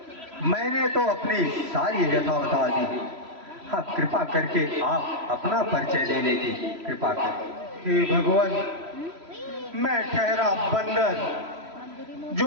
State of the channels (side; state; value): left; late; 3.0 ms